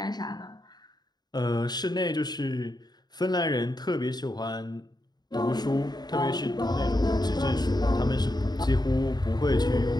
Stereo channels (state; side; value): late; right; 0.20 ms